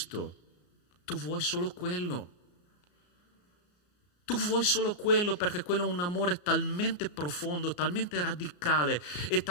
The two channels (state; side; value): late; right; 34 ms